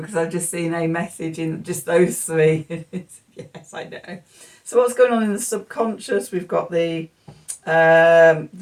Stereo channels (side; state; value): both; identical; correlation 1.00